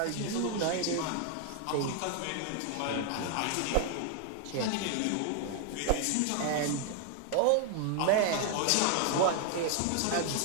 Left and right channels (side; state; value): both; different; correlation 0.00